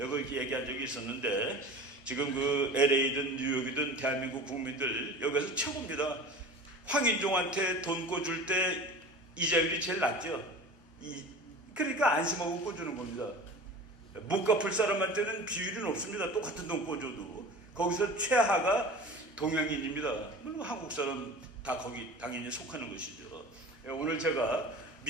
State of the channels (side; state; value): both; normal; correlation 0.37